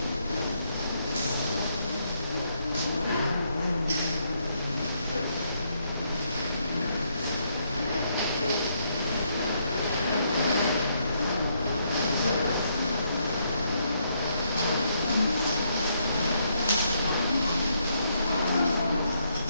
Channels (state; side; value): inverted; both; correlation -0.75